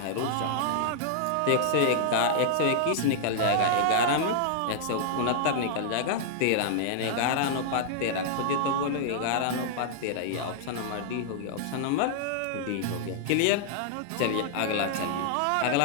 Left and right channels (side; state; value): both; different; correlation -0.01